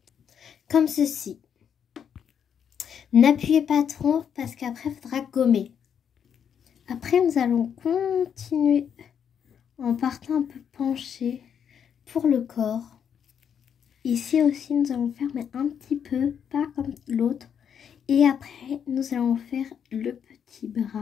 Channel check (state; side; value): quieter; right; 8.0 dB